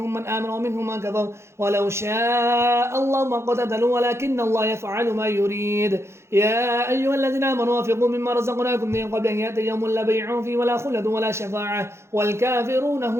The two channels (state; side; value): late; left; 0.13 ms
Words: من آمن ومنهم من كفر ولو شاء الله ما قتلوا ولكن الله يفعل ما يريد. يا أيها الذين آمنوا وانفقوا مما رزقناكم من قبل أن يأتي يوم لا بيع فيه ولا خلد ولا شفاعة والكافرون